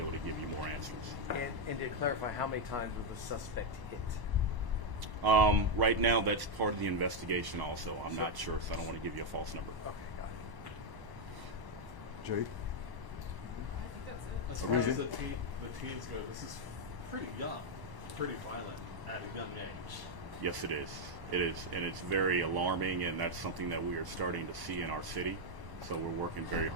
able to give you more answers. And to clarify, how many times was the suspect hit? Right now, that's part of the investigation also. I'm not sure, so I don't want to give you a false number. Okay, got it. Jay? As far as the teens go, this is pretty young, pretty violent at a young age. Yes, it is. It is, and it's very alarming, and that's something that we are starting to see in our city. So we're working very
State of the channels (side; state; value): left; late; 1.1 ms